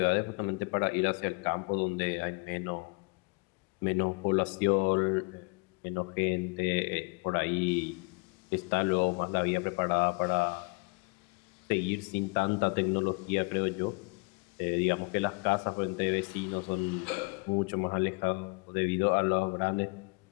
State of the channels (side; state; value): right; quieter; 31.2 dB